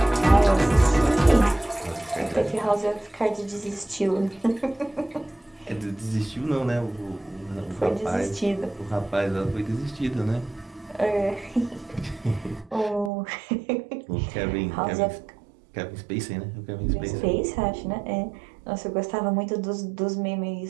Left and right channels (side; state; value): left; drops out; at 13.1 s